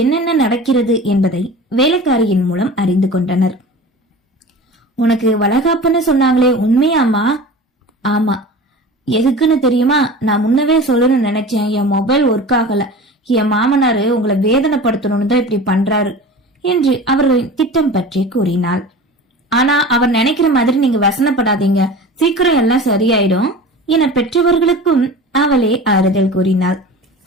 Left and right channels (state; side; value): normal; both; correlation 0.36